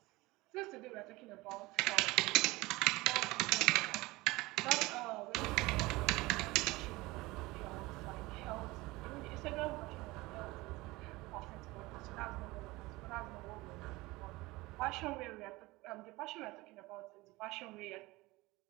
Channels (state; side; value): quieter; left; 21.1 dB